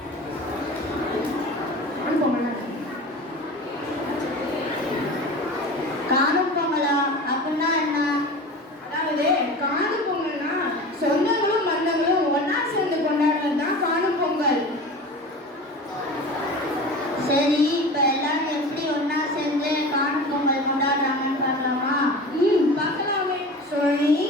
காணும் பொங்கல் காணும் பொங்கலா? அப்படின்னா என்ன? அதாவது காணும் பொங்கல்னா சொந்தங்களும் பந்தங்களும் ஒன்னா சேர்ந்து கொண்டாடுறது தான் காணும் பொங்கல். சரி, இப்ப எல்லாரும் எப்படி ஒண்ணா சேர்ந்து காணும் பொங்கல் கொண்டாடுறாங்கன்னு பார்க்கலாமா? பார்க்கலாமே.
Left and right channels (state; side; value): normal; both; correlation 0.34